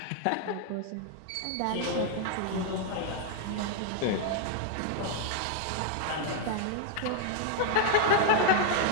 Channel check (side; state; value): both; different; correlation 0.00